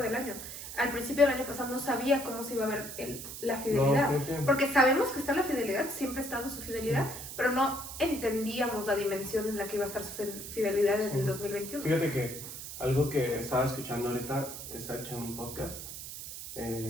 del año. Al principio del año pasado no sabía cómo se iba a ver la fidelidad, porque sabemos que está la fidelidad, siempre ha estado su fidelidad, pero no entendíamos la dimensión en la que iba a estar su fidelidad en el 2021. Fíjate que Algo que estaba escuchando ahorita, estaba escuchando un podcast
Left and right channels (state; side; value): noise; right; hiss, 9 dB below the sound